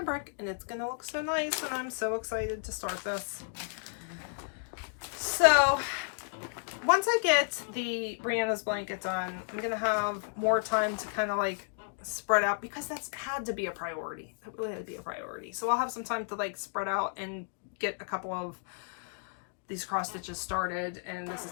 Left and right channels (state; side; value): silent; right; digital silence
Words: and it's going to look so nice, and I'm so excited to start this. So once I get the Brianna's blanket done, I'm going to have more time to kind of like spread out, because that's had to be a priority. That really had to be a priority. So I'll have some time to like spread out and get a couple of these cross stitches started, and this is